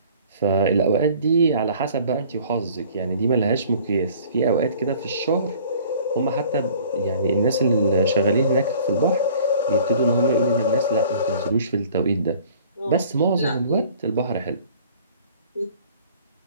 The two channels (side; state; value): both; inverted; correlation -0.51